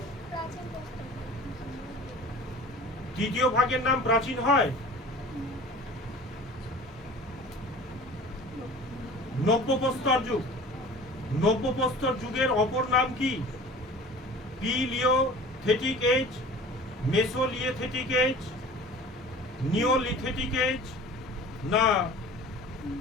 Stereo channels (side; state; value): both; normal; correlation 0.42